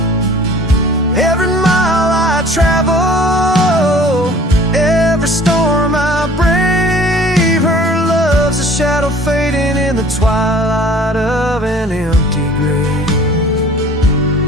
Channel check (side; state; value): both; normal; correlation 0.49